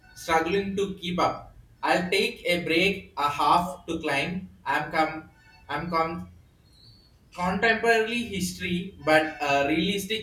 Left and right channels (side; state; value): both; identical; correlation 1.00